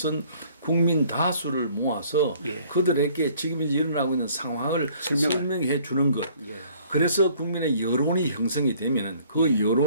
국민 다수를 모아서 그들에게 지금 이제 일어나고 있는 상황을 설명해 주는 것. 그래서 국민의 여론이 형성이 되면은 그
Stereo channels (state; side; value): inverted; both; correlation -0.58